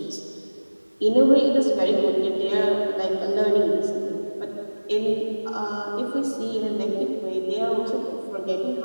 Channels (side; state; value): both; inverted; correlation -1.00